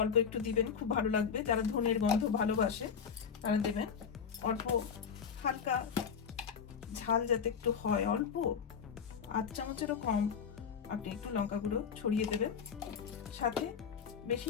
অল্প একটু দিবেন, খুব ভালো লাগবে। যারা ধনের গন্ধ ভালোবাসে তারা দেবেন। অল্প হালকা ঝাল যাতে একটু হয়, অল্প 8 চামচেরও কম আপনি একটু লঙ্কা গুঁড়ো ছড়িয়ে দেবেন। সাথে বেশি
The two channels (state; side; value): quieter; right; 6.8 dB